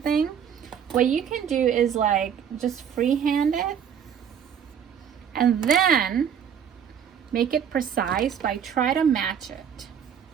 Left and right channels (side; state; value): left; quieter; 8.1 dB